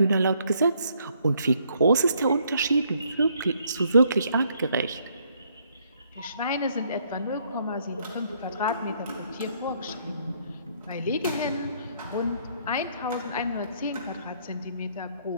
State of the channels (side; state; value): both; inverted; correlation -0.69